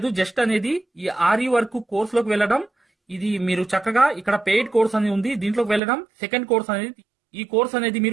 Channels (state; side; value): drops out; left; at 5.8 s